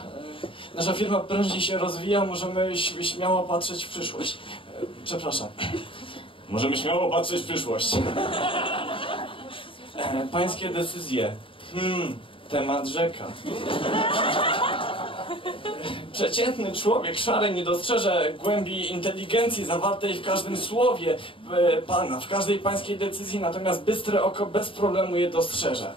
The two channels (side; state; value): right; late; 0.25 ms